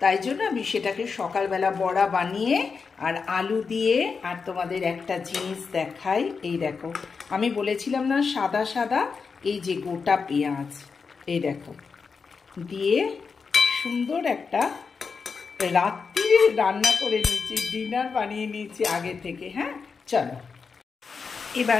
তাই জন্য আমি সেটাকে সকালবেলা বড়া বানিয়ে আর আলু দিয়ে, আর তোমাদের একটা জিনিস দেখাই, এই দেখো আমি বলেছিলাম না সাদা সাদা, এই যে গোটা পেঁয়াজ এই দেখো দিয়ে সুন্দর একটা রাত্রি রান্না করে নিয়েছি, ডিনার বানিয়ে নিয়েছি আগে থেকে। হ্যাঁ চলো,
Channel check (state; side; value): quieter; right; 5.2 dB